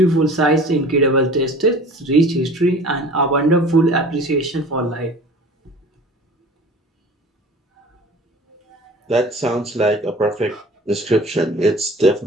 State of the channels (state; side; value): normal; both; correlation 0.43